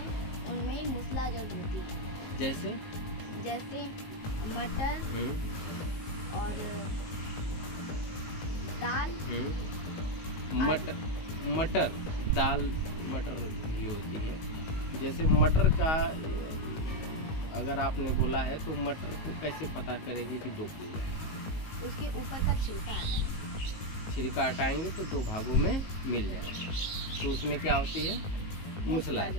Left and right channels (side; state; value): right; late; 19 ms